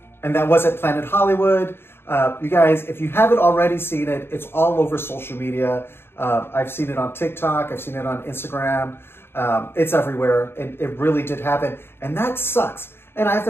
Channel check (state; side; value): late; right; 0.11 ms